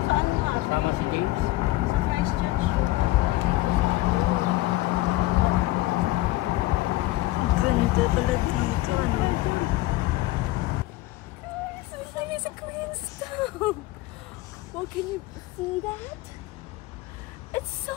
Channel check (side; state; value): right; quieter; 18.3 dB